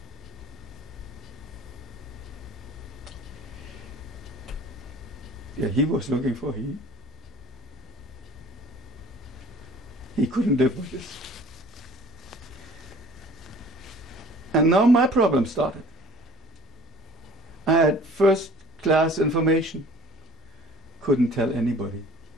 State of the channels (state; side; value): normal; both; correlation 0.48